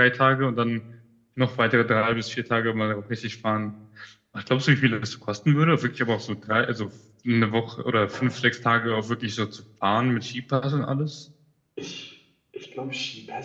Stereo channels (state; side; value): identical; both; correlation 1.00